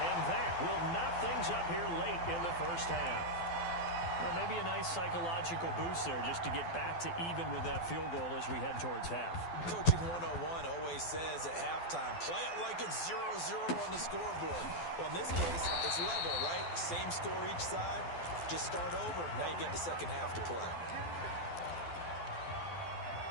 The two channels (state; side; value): late; right; 12 ms